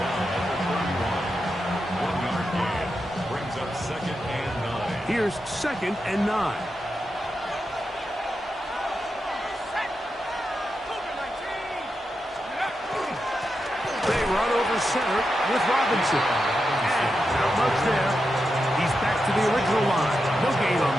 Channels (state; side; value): normal; both; correlation 0.88